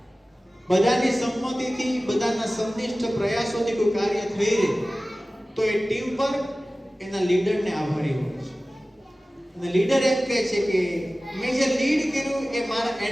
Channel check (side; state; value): both; normal; correlation 0.97